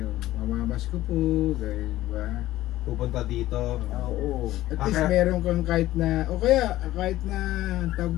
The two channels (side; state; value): right; quieter; 15.3 dB